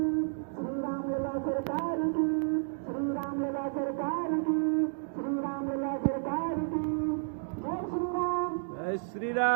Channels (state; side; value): silent; left; digital silence